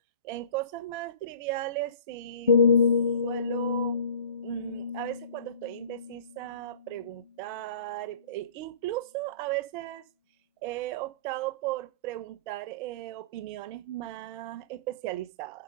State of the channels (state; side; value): inverted; both; correlation -0.43